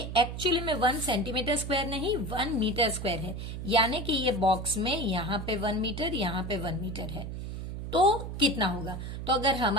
एक्चुअली में 1 सेंटीमीटर स्क्वायर नहीं 1 मीटर स्क्वायर है, यानी कि ये बॉक्स में यहाँ पे 1 मीटर, यहाँ पे 1 मीटर है। तो कितना होगा। तो अगर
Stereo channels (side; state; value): right; noise; hum, 7 dB below the sound